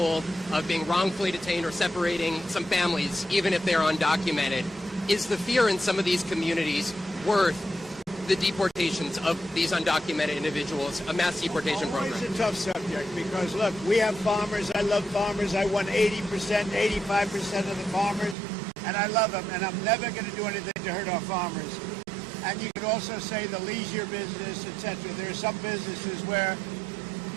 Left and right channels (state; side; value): drops out; left; at 18.4 s